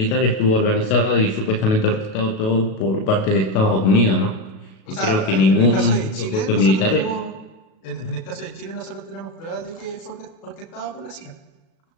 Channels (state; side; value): late; right; 36 ms